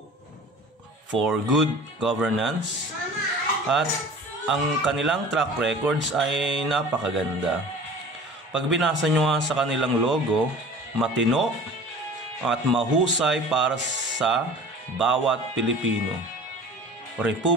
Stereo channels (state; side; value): normal; both; correlation 0.42